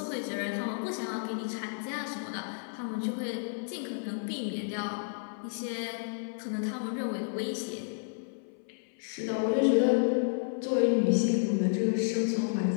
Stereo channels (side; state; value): right; silent; 57 dB below the other